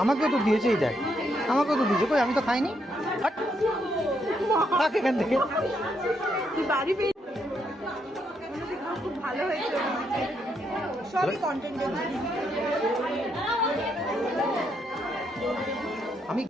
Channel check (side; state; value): both; normal; correlation 0.76